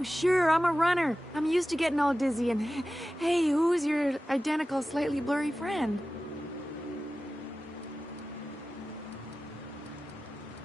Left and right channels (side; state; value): both; normal; correlation 0.95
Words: sure, I'm a runner. I'm used to getting all dizzy, and hey, who's your identical, slightly blurry friend?